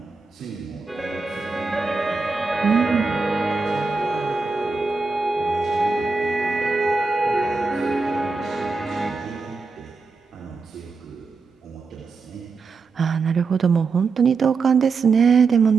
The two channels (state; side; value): quieter; left; 4.4 dB